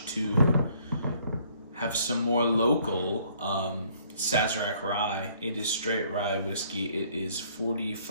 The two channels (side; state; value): both; inverted; correlation -0.62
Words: to have some more local Sazerac Rye. It is straight rye whiskey. It is